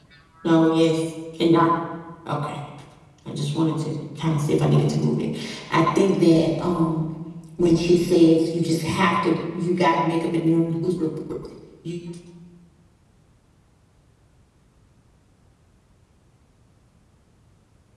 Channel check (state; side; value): identical; both; correlation 1.00